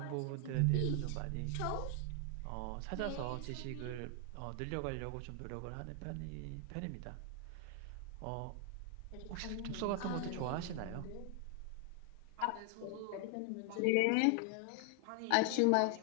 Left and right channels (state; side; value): different; both; correlation 0.00